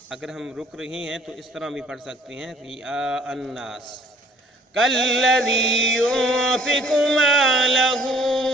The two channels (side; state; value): both; normal; correlation 0.58